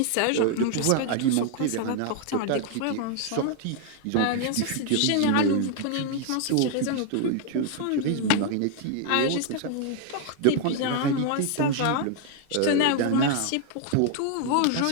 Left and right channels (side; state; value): both; different; correlation 0.00